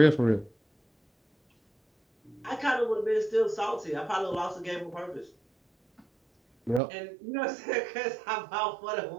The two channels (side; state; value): left; drops out; at 6.8 s